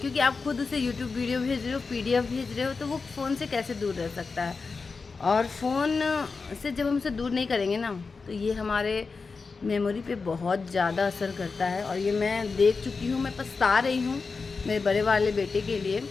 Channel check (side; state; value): right; quieter; 4.5 dB